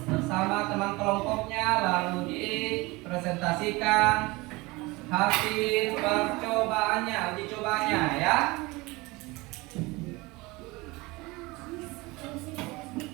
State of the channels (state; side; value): quieter; left; 23.0 dB